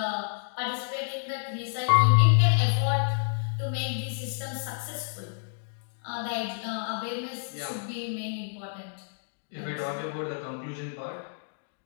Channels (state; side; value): silent; right; digital silence